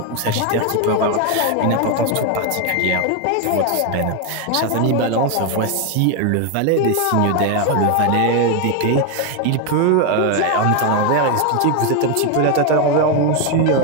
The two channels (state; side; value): different; both; correlation 0.02